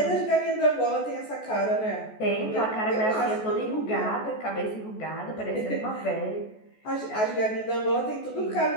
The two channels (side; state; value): right; late; 14 ms